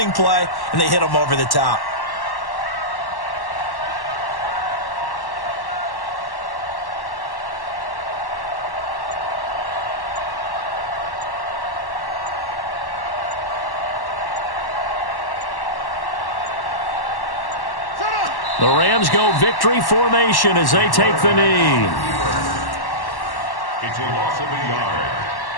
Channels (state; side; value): late; right; 1.1 ms